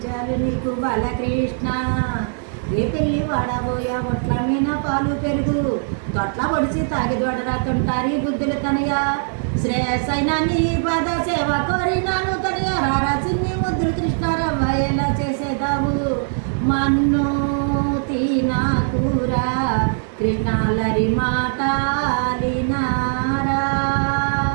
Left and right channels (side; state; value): left; silent; digital silence